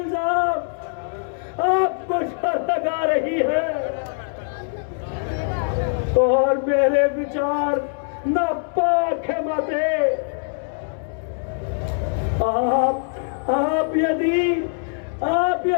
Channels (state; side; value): silent; right; 64 dB below the other